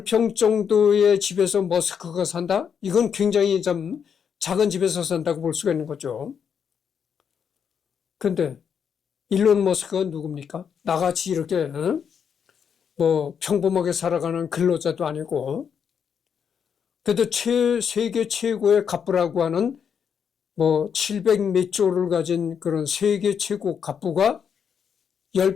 정도의 집에서 머스크가 산다? 이건 굉장히 좀 작은 집에서 산다고 볼 수가 있는 거죠. 근데 일론 머스크가 누굽니까? 나같이 이렇게 평범하게 살아가는 근로자도 아니고 그래도 세계 최고의 갑부라고 하는 700 몇 조를 가진 그런 세계 최고 갑부가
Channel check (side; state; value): right; quieter; 7.3 dB